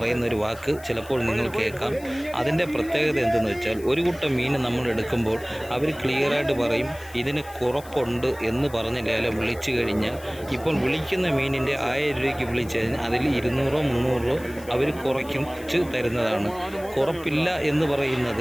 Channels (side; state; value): left; noise; hiss, 20 dB below the sound